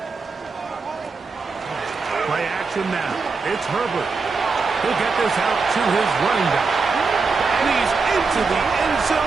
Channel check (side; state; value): left; quieter; 4.5 dB